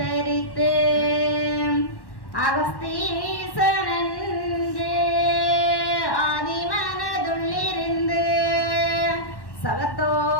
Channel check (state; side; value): late; right; 1.1 ms